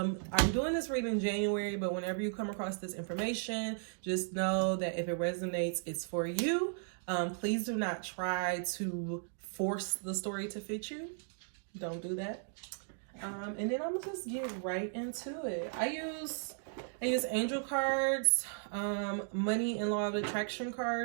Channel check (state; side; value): silent; left; digital silence